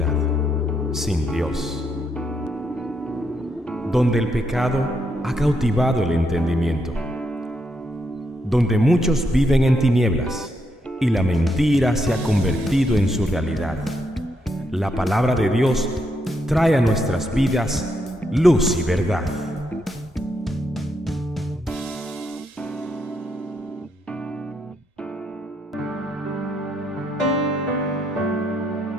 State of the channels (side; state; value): both; normal; correlation 0.78